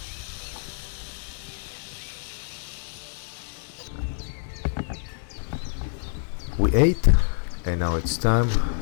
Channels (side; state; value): right; silent; digital silence